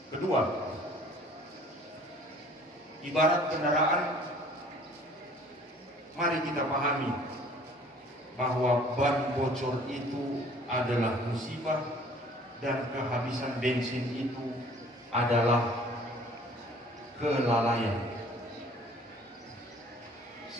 Kedua, ibarat kendaraan, mari kita pahami bahwa ban bocor itu adalah musibah dan kehabisan bensin itu adalah kelalaian.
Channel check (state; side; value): normal; both; correlation 0.52